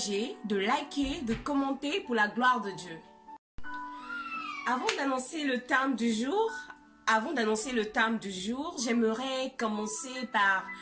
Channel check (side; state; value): both; identical; correlation 1.00